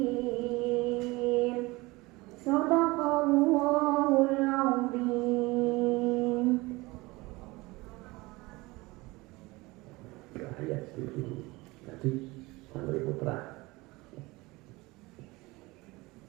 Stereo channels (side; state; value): left; quieter; 22.3 dB